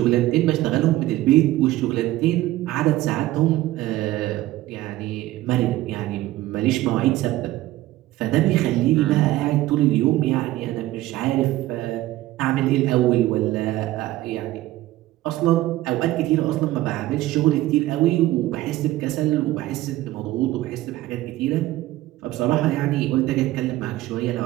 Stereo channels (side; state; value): left; quieter; 16.2 dB